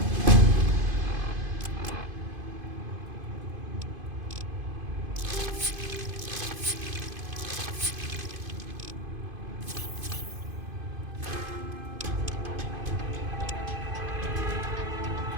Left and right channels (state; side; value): late; left; 2.5 ms